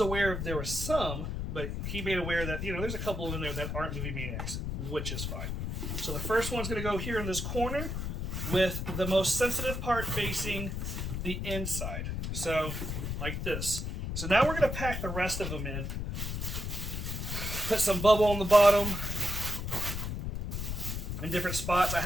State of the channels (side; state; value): left; noise; rumble, 3 dB below the sound